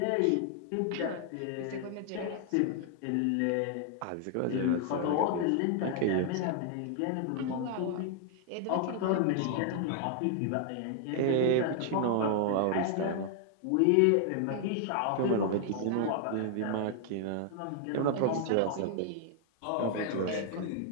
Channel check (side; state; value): both; different; correlation 0.00